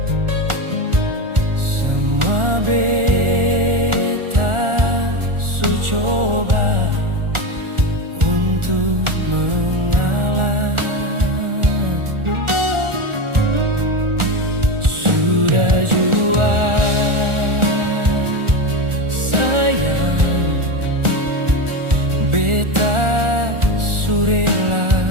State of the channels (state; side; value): late; left; 1.4 ms